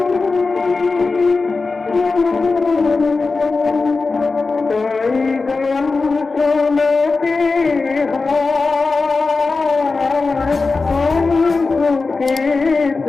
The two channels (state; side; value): quieter; right; 4.0 dB